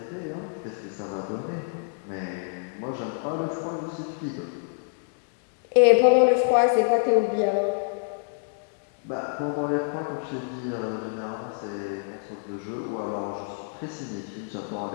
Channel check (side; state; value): right; silent; digital silence